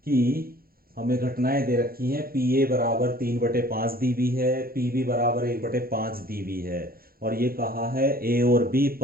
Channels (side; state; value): left; late; 0.43 ms